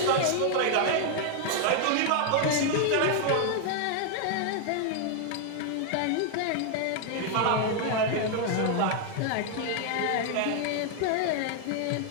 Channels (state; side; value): different; both; correlation 0.00